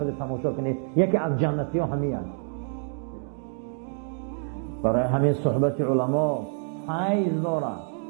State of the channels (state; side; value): silent; left; 59 dB below the other